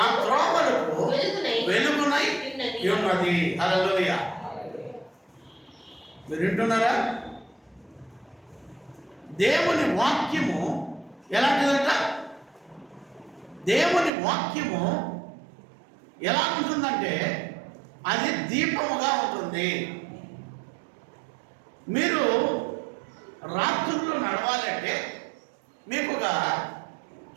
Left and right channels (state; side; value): drops out; left; at 14.1 s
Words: త్రోవలకు వెలుగునై ఉన్నది. హల్లెలూయా. మీరు వింటున్నారా? దేవుని వాక్యము ఎలాంటిదంట? దేవుని వాక్యము ఎలా ఉంటుందంటే అది దీపముగా ఉంటుంది. మీరు రాత్రుల్లో నడవాలంటే మీకు ఒక